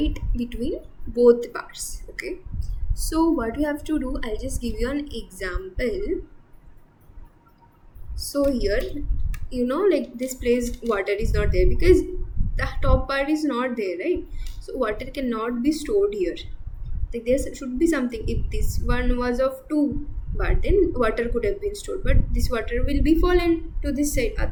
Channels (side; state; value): both; identical; correlation 1.00